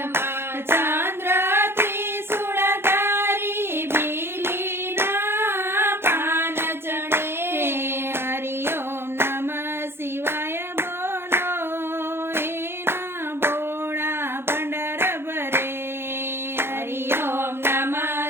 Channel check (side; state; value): left; late; 0.11 ms